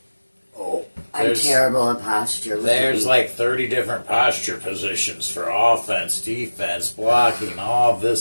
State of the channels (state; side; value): inverted; both; correlation -1.00